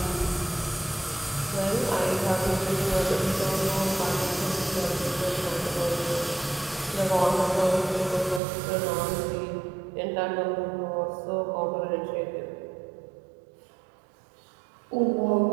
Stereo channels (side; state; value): left; drops out; at 8.4 s